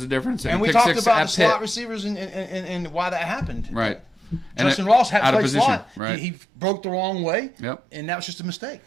difference. And we talked about the slot receivers and why that happened. Right. Justin Ross had to play slot. Right. He broke the wrong way. Yep. And that was just a mistake.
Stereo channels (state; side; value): drops out; left; at 6.0 s